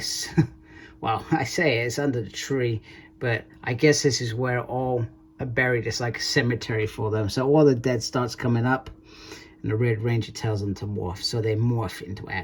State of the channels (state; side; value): identical; both; correlation 1.00